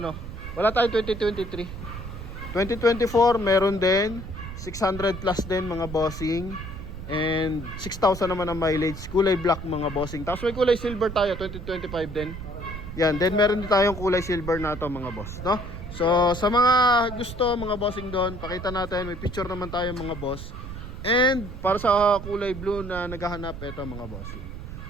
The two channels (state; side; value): noise; right; rumble, 10 dB below the sound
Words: Wala tayong 2023. 2024 meron din 600 plus din mga bossing. And 6,000 naman ang mileage. Kulay black mga bossing. Tapos may kulay silver tayo, 2025 din. Yan, then meron din tayong kulay silver na to mga boss, no? So sa mga gusto mga bossing doon, pakita natin, may picture naman tayo mga boss. And para sa kulay blue na naghahanap, ito mga bossing.